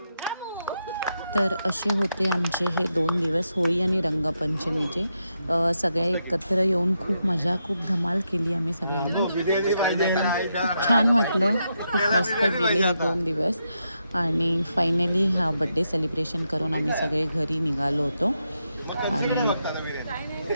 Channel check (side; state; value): both; inverted; correlation -0.83